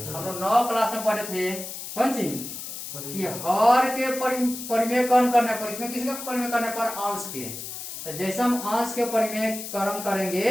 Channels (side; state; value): left; noise; hiss, 9 dB below the sound